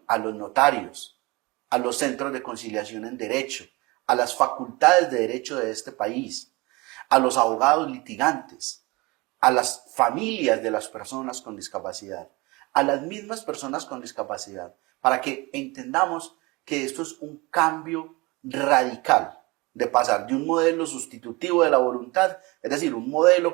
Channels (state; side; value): quieter; left; 24.3 dB